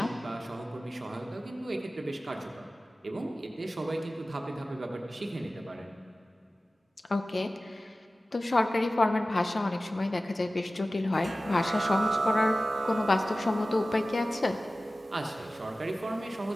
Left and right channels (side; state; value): both; normal; correlation 0.96